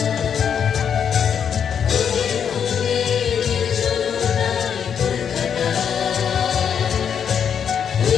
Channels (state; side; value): quieter; right; 7.8 dB